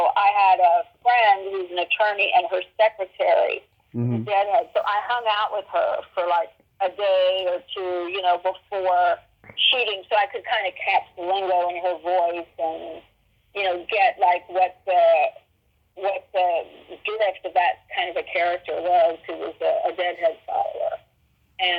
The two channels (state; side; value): identical; both; correlation 1.00